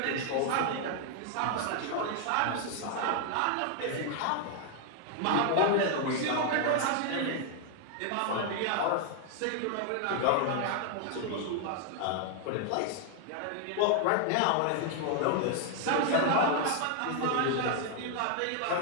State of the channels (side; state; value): both; different; correlation 0.00